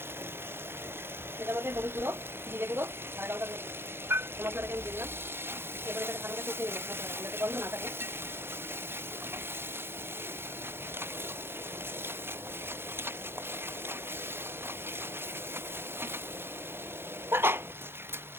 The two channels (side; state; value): left; late; 0.11 ms